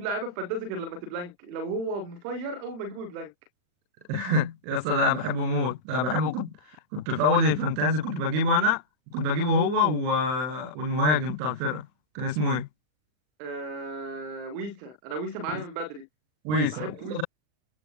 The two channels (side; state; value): left; late; 40 ms